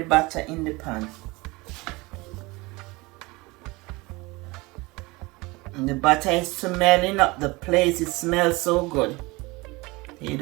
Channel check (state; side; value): quieter; left; 23.4 dB